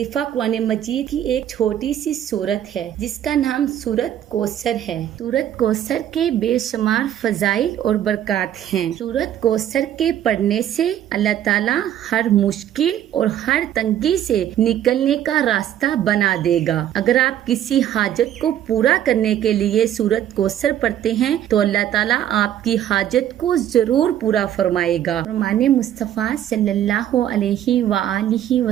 قرآن مجید کی ایک چھوٹی سی سورت ہے جس کا نام سورت کوثر ہے۔ سورت کوثر کے بے شمار فضائل اور برکات ہیں۔ سورت کوثر کے پڑھنے سے اللہ تعالیٰ ہر مشکل اور ہر تنگی سے نکلنے کا راستہ بنا دے گا۔ اگر آپ کسی حاجت کو پورا کرنے کے لیے سورت کوثر پڑھتے ہیں تو اللہ تعالیٰ آپ کی حاجت کو ضرور پورا فرمائے گا۔ فرمان مصطفیٰ صلی اللہ علیہ وآلہ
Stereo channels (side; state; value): left; quieter; 11.0 dB